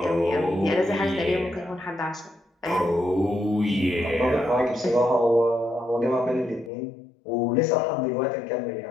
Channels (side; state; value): right; drops out; at 6.7 s